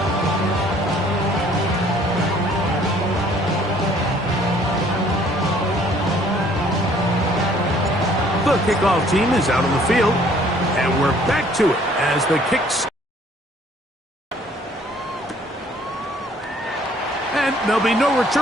The kickoff team is out on the field, and we're back to it as the kicks. And there'll be no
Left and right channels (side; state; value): both; normal; correlation 0.59